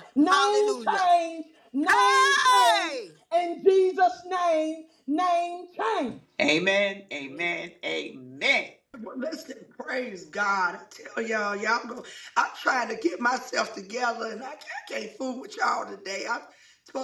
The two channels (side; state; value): both; identical; correlation 1.00